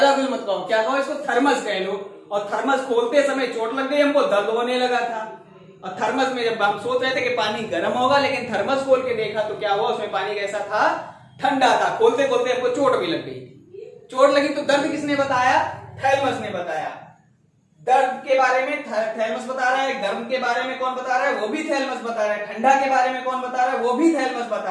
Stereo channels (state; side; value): identical; both; correlation 1.00